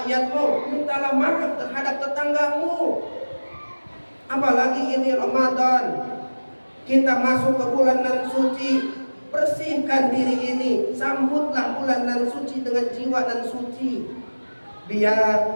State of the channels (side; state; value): both; inverted; correlation -1.00